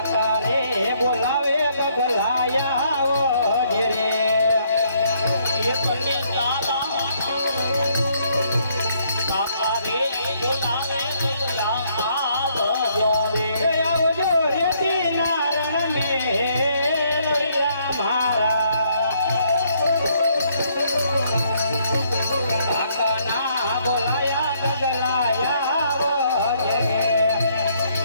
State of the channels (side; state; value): both; inverted; correlation -0.69